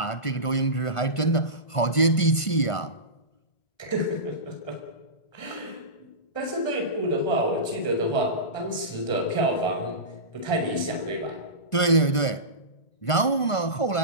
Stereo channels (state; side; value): late; right; 1.5 ms